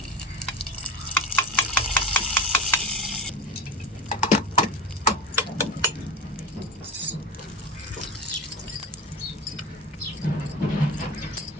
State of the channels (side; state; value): both; normal; correlation 0.26